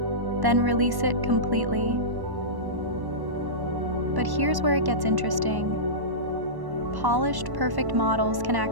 then release it completely. But here's where it gets interesting. Polished, perfect models can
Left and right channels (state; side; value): late; left; 1.1 ms